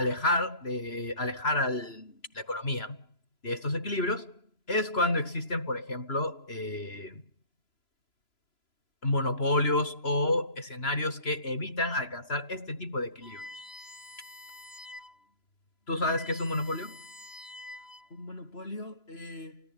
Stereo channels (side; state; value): right; late; 3.0 ms